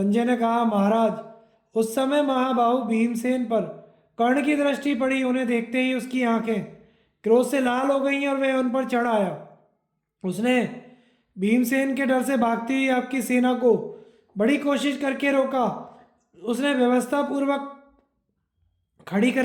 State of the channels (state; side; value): identical; both; correlation 1.00